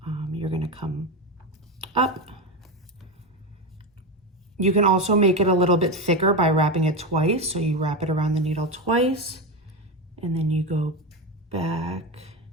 You're gonna come up. You can also make it a little bit thicker by wrapping it twice. So you wrap it around the needle twice, and then you go back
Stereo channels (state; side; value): normal; both; correlation 0.16